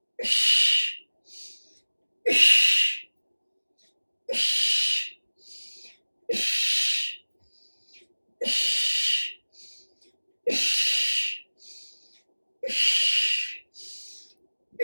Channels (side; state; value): both; inverted; correlation -1.00